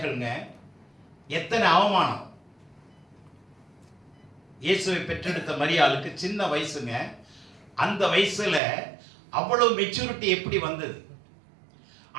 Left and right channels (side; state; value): left; drops out; at 8.6 s